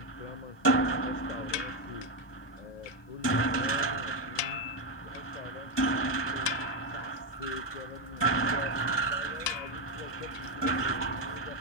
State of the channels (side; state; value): right; late; 1.2 ms